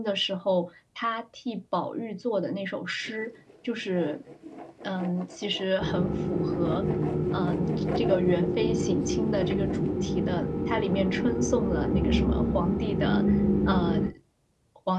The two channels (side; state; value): both; identical; correlation 1.00